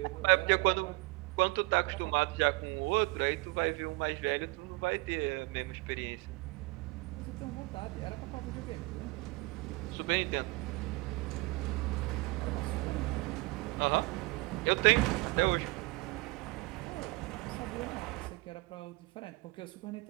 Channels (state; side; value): quieter; left; 24.0 dB